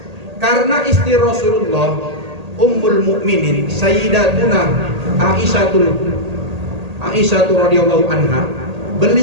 Karena istri Rasulullah Ummul Mukminin Sayyidatuna Aisyah radhiyallahu anha,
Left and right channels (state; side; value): late; left; 1.8 ms